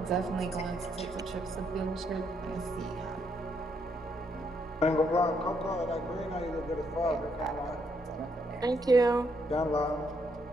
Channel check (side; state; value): both; normal; correlation 0.75